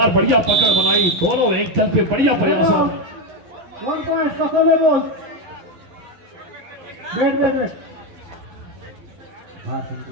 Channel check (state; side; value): late; left; 11 ms